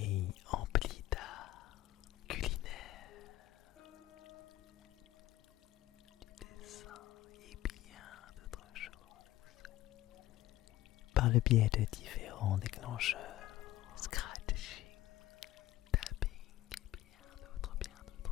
empli d'art culinaire, du dessin et bien d'autres choses, par le biais de différents déclencheurs, scratching, tapping et bien d'autres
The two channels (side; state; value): right; quieter; 14.9 dB